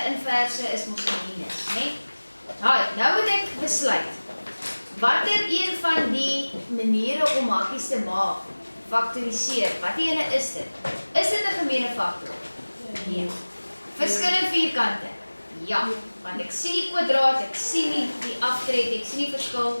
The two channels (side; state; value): both; inverted; correlation -1.00